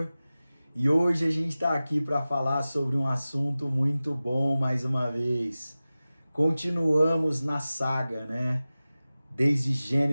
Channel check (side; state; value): both; inverted; correlation -0.96